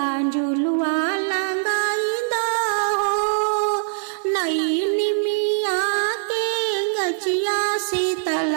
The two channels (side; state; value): left; silent; 64 dB below the other